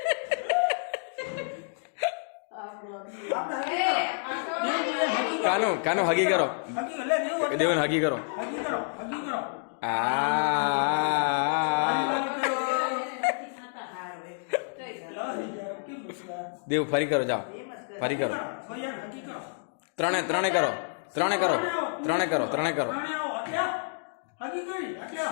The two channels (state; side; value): silent; right; digital silence